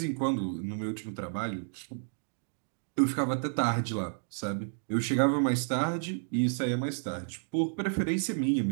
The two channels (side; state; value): left; silent; digital silence